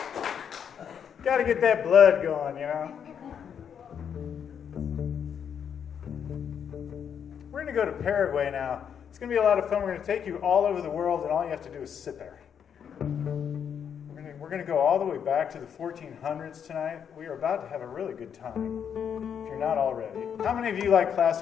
Got to get that blood going, you know. We're going to go to Paraguay now. It's going to be a lot of fun. We're going to take you all over the world, and all you have to do is sit there. We're going to go all the way back to the 1400s tonight. We are about to have a really good time, if you're not already. How many of you like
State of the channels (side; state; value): right; quieter; 7.9 dB